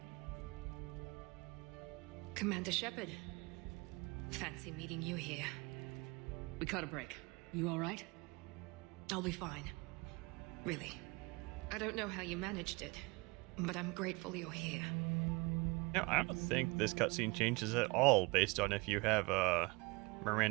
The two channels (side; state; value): left; quieter; 26.7 dB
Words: Commander Shepard. Fancy meeting you here. We caught a break. You all right? I'll be fine. Really. I don't know how you managed it, but I'm grateful you're here. Now, I don't think this cutscene changes at all based on if you have